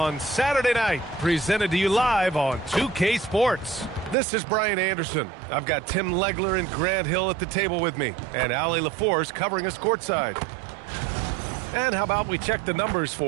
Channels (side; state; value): left; drops out; at 4.2 s